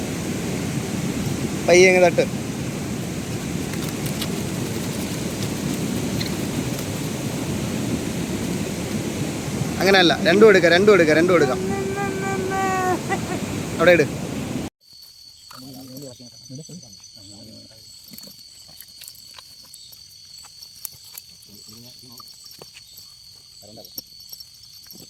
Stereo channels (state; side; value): identical; both; correlation 1.00